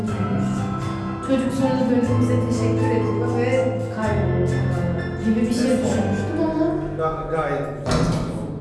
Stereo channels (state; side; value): identical; both; correlation 1.00